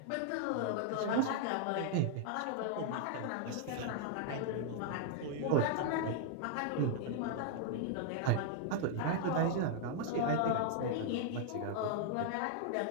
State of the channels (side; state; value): both; different; correlation 0.00